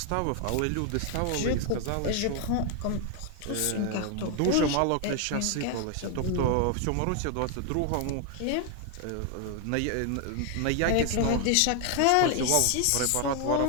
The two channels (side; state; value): both; different; correlation 0.00